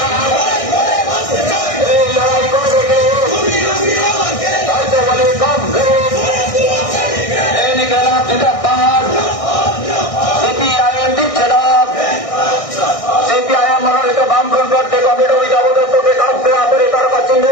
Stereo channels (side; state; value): right; late; 1.6 ms